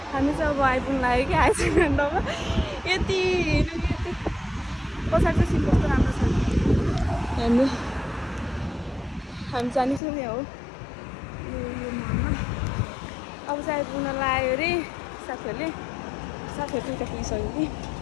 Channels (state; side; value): drops out; right; at 10.0 s